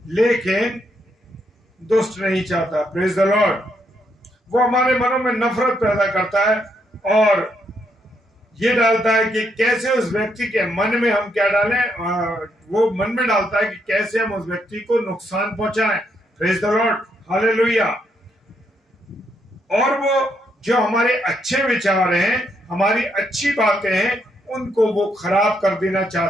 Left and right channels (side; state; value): both; normal; correlation 0.76